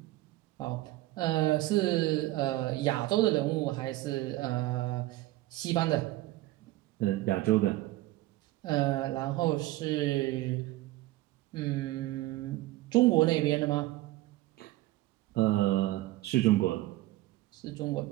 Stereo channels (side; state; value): left; quieter; 17.5 dB